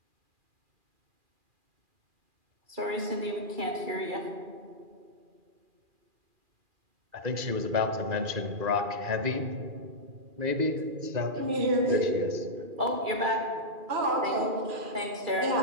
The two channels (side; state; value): left; late; 2.4 ms